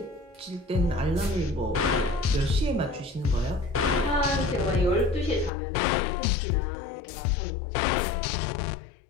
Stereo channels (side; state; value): right; drops out; at 5.5 s